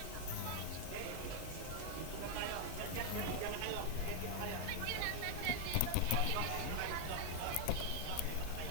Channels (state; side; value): different; both; correlation -0.01